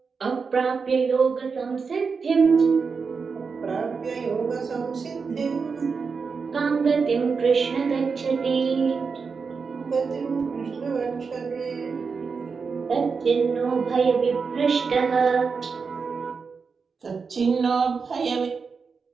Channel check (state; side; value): quieter; left; 5.2 dB